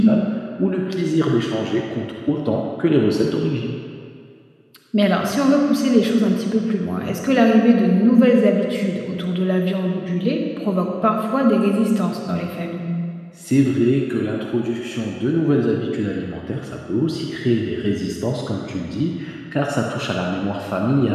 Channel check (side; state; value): both; identical; correlation 1.00